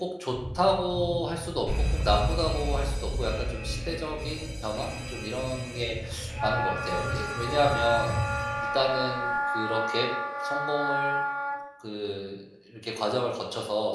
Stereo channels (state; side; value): identical; both; correlation 1.00